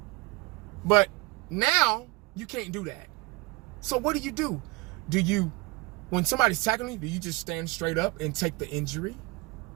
But now, you can't do that. So what do? When somebody's tackling you, do you just stand straight up and take the injury?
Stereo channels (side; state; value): left; quieter; 23.3 dB